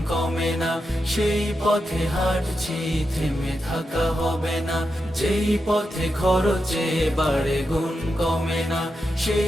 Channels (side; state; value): both; normal; correlation 0.87